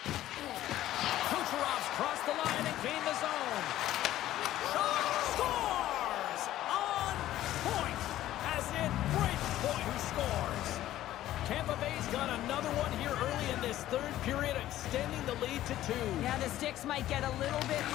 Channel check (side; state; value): right; quieter; 13.8 dB